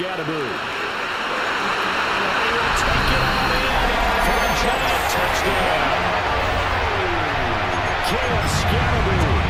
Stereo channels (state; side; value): identical; both; correlation 1.00